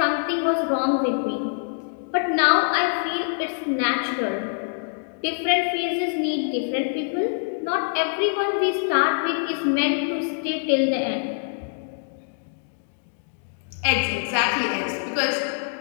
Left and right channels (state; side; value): silent; right; digital silence